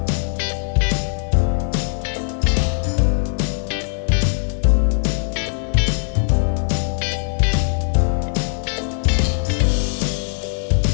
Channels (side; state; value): right; silent; 58 dB below the other